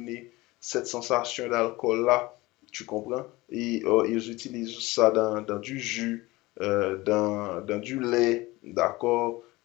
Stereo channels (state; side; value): quieter; right; 20.7 dB